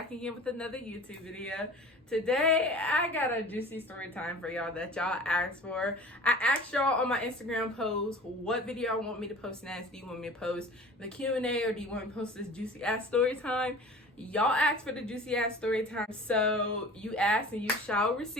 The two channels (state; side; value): normal; both; correlation 0.41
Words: again with another YouTube video. Today, I got a juicy story time for y'all that y'all asked for. I asked y'all on my Instagram post what video I want me to post next. Do you want me to post the Q&A or do you want me to post this juicy ass story time? Y'all asked for the juicy ass story time, so you asked and you shall